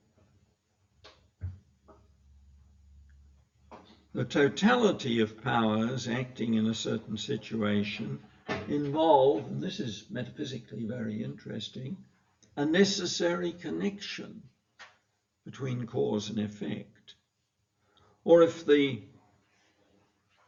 The totality of powers acting in a certain situation involve, and this is metaphysically very interesting, a necessary connection between cause and effect. Or if the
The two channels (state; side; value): identical; both; correlation 1.00